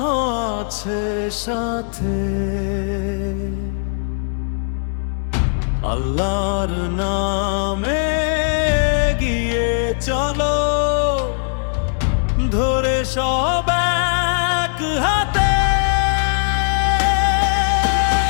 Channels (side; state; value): right; silent; digital silence